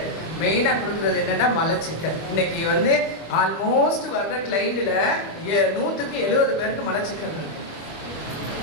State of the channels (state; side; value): late; right; 25 ms